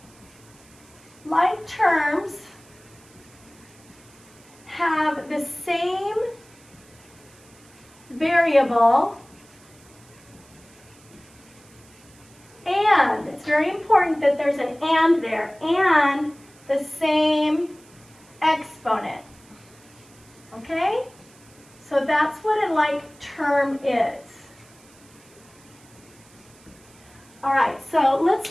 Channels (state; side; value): noise; right; hiss, 26 dB below the sound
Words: Like terms have the same variable and, it's very important that there's an and there, and the same exponent, okay? So that's what a like term is. All right, so let's